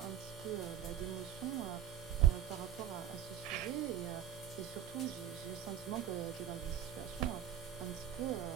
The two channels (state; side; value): quieter; left; 9.9 dB